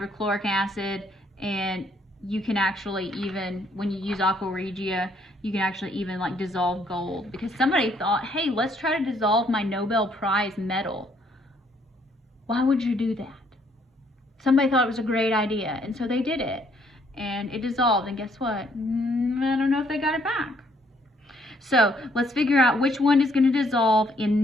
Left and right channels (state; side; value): normal; both; correlation 0.68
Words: acid, and you can actually, even when you use aqua regia, you can actually even like dissolve gold, because somebody thought, hey, let's try to dissolve my Nobel Prize medal. Why would you do that? Somebody thought it was a great idea, and so they did it, and it dissolved, and guess what? I don't know if they got it back. So let's figure out which one is going to dissolve